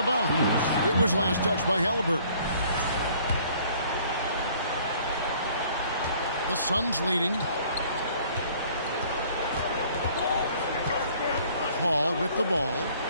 bounds. It was last touched by Halliburton. The Suns leading. Paul with the ball.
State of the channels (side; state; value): both; inverted; correlation -0.57